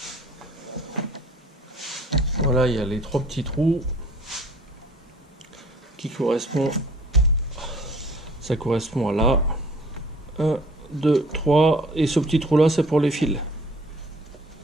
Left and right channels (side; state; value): both; normal; correlation 0.53